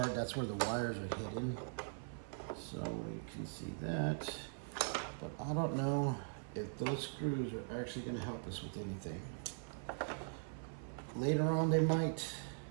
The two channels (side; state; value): left; silent; 50 dB below the other